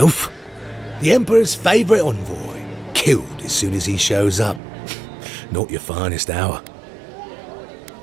The Emperor's favourite envoy, killed as soon as he shows up. Not your finest hour.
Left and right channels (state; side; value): drops out; left; at 4.6 s